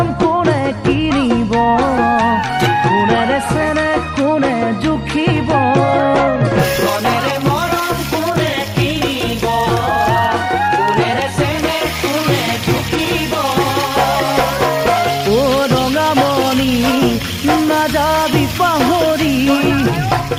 কোনে কিনিব, কোনেৰে চেনে কোনে জুখিব। ধনেৰে মৰম কোনে কিনিব, কোনেৰে চেনে কোনে জুখিব। অ ৰঙামণি নাযাবি পাহৰি,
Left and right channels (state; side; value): identical; both; correlation 1.00